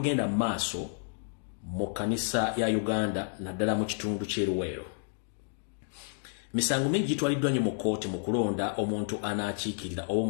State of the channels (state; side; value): silent; right; digital silence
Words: mu maaso mu kanisa ya Uganda naddala mu kitundu ky'eruweero misango mingi gitwaliddwa nnyo mu kooti mu kulonda omuntu anaakiikirira oba